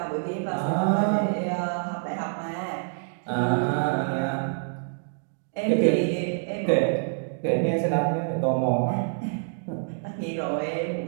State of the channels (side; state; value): left; silent; digital silence